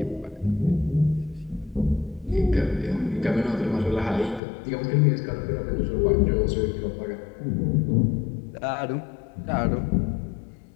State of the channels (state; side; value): drops out; right; at 4.4 s